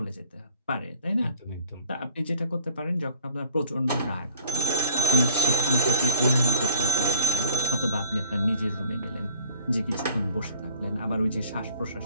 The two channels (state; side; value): inverted; both; correlation -0.43